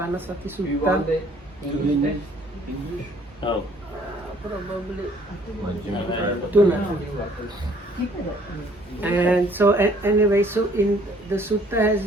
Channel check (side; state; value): both; normal; correlation 0.60